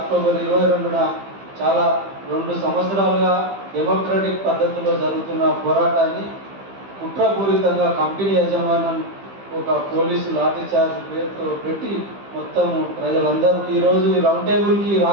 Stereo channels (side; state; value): left; late; 15 ms